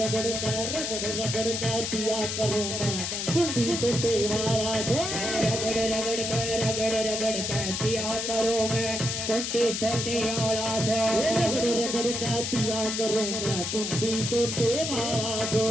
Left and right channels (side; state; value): left; noise; hiss, 2 dB below the sound